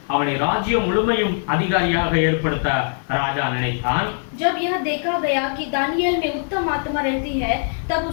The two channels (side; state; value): right; silent; 65 dB below the other